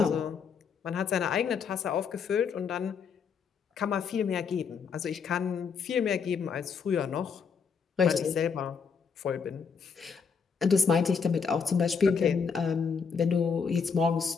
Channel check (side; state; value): right; quieter; 6.0 dB